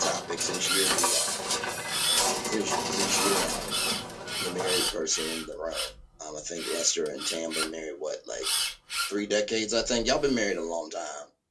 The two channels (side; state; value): both; identical; correlation 1.00